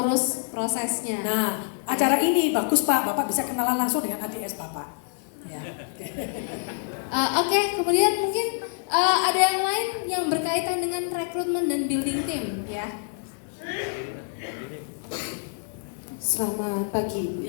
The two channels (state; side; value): silent; right; 61 dB below the other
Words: prosesnya. Nah, acara ini bagus Pak, Bapak bisa kenalan langsung dengan ADS Bapak. Ya. Oke, kemudian mungkin ada yang lain yang berkaitan dengan rekrutmen dan building tim ya. Selamat pagi, Bu.